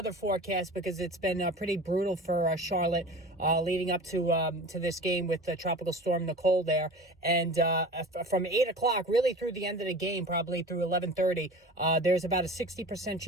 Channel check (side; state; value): both; normal; correlation 0.37